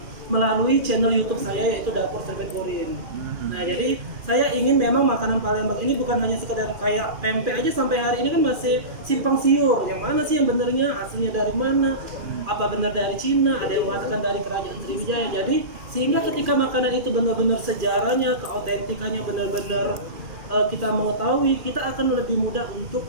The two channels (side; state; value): left; late; 2.4 ms